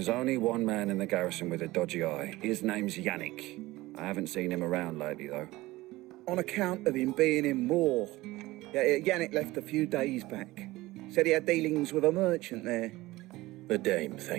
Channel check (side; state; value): left; quieter; 18.9 dB